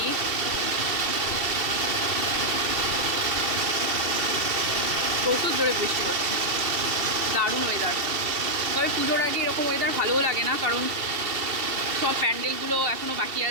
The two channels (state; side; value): late; left; 2.7 ms